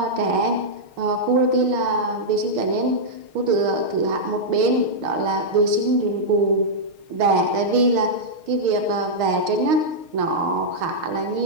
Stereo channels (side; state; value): left; late; 6.5 ms